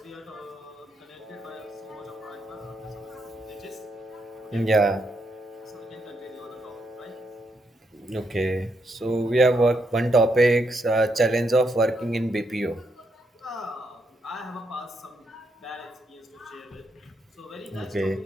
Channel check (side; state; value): both; normal; correlation 0.79